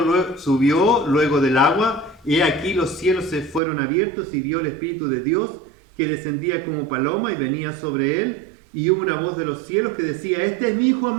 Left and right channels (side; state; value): left; drops out; at 3.6 s